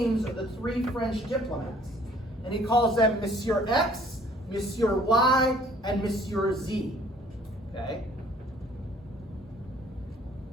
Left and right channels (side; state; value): both; normal; correlation 0.57